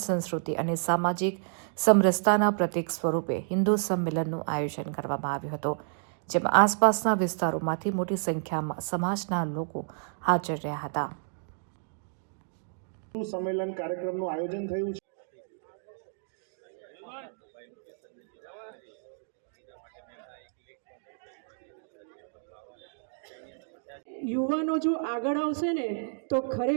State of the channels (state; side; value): silent; left; digital silence